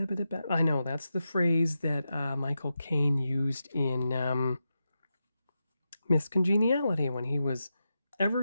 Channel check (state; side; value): inverted; both; correlation -0.89